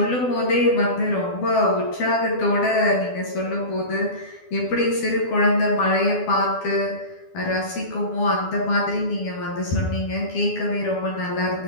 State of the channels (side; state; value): right; late; 12 ms